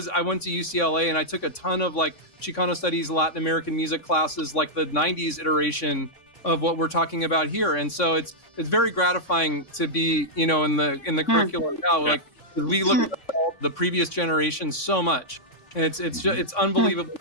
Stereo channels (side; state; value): right; late; 3.6 ms